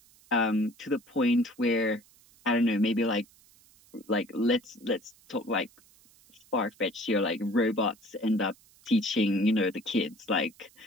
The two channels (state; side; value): noise; right; hiss, 28 dB below the sound